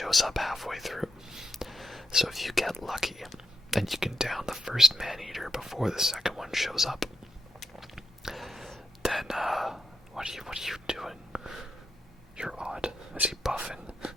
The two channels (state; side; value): normal; both; correlation 0.82